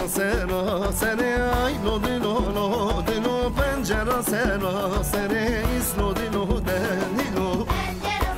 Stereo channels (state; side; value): identical; both; correlation 1.00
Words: سراسری لو دلو لو دلو پنجره سراسری لو دلو دلو